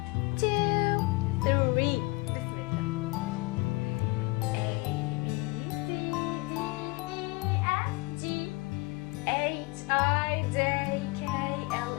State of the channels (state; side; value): quieter; right; 24.7 dB